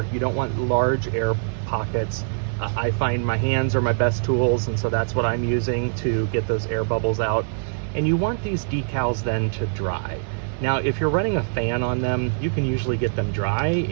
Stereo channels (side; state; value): left; silent; digital silence